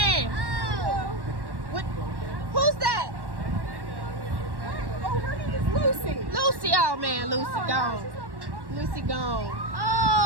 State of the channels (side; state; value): left; late; 1.1 ms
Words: What? Who's that? Oh, her name is Lucy. Lucy. Oh man, Lucy gone. Lucy gone.